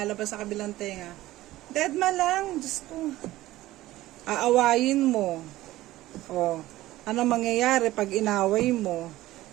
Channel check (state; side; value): quieter; left; 16.4 dB